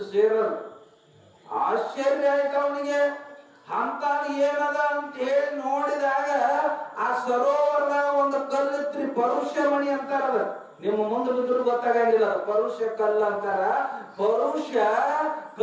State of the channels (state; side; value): identical; both; correlation 1.00